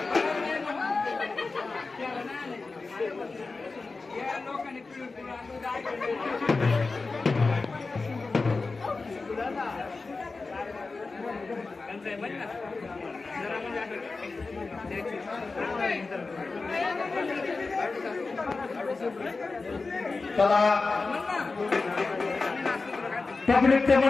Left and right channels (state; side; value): quieter; right; 3.9 dB